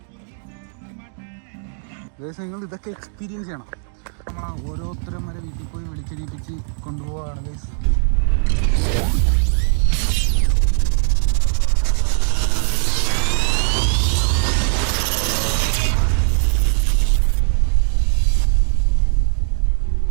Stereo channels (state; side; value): silent; left; digital silence